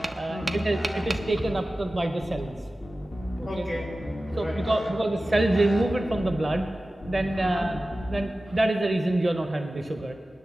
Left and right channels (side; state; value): both; normal; correlation 0.95